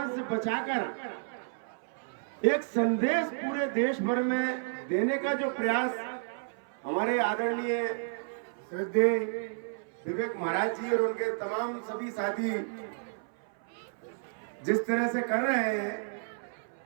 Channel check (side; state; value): left; silent; 57 dB below the other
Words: से बचाकर एक संदेश पूरे देश भर में देने का जो प्रयास हमारे आदरणीय श्रद्धेय विवेक महाराज जी और उनके तमाम सभी साथी जिस तरह से कर रहे हैं